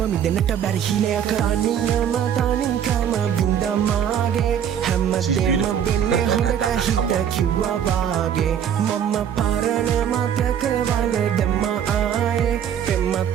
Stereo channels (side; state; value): left; quieter; 9.0 dB